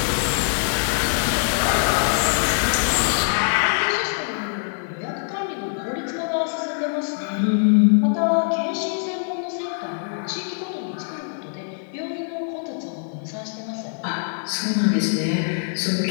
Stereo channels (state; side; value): silent; right; 63 dB below the other